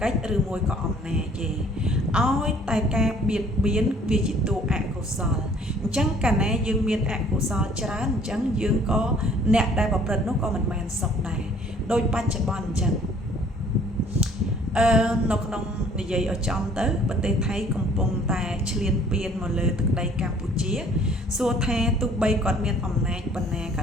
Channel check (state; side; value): normal; both; correlation 0.57